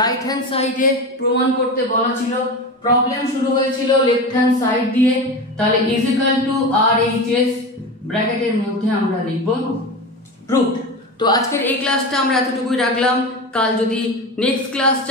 হ্যান্ড সাইডে প্রমাণ করতে বলা ছিল। প্রবলেম শুরু হয়েছিল লেফট হ্যান্ড সাইড দিয়ে, তাহলে ইজ ইকুয়াল টু RHS ব্র্যাকেটের মধ্যে আমরা লিখব প্রুফড। তো আজকের এই ক্লাসটা আমরা এতটুকুই রাখলাম। কাল যদি নেক্সট ক্লাস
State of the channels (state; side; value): normal; both; correlation 0.25